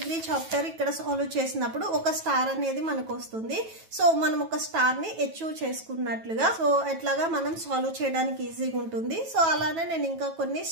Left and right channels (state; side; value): late; left; 9.2 ms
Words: చాప్టర్ ఇక్కడ సాల్వ్ చేసినప్పుడు ఒక స్టార్ అనేది మనకు వస్తుంది. సో మనం ఒక స్టార్ ని అచీవ్ చేసుకున్నట్లుగా సో ఎట్లాగా మనం సాల్వ్ చేయడానికి ఈజీగా ఉంటుంది. సో అలానే నేను ఇంకా కొన్ని